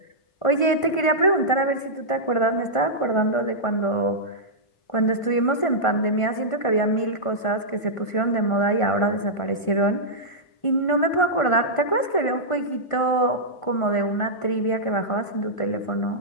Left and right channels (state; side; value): late; right; 1.5 ms